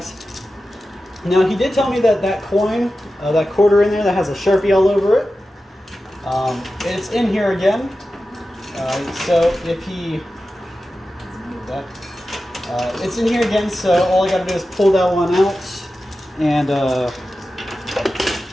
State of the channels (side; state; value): both; normal; correlation 0.93